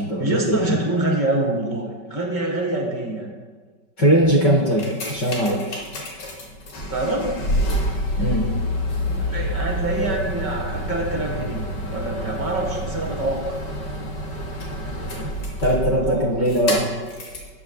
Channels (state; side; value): late; right; 5.3 ms